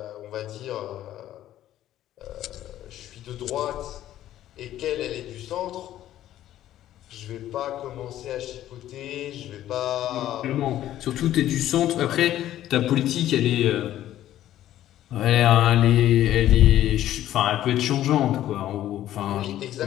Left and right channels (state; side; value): quieter; right; 12.8 dB